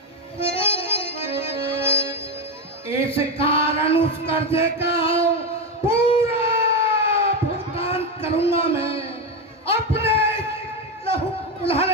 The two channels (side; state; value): both; normal; correlation 0.12